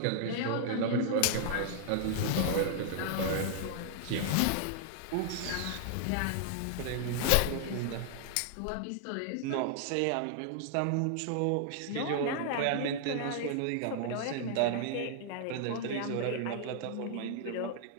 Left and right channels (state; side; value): different; both; correlation -0.01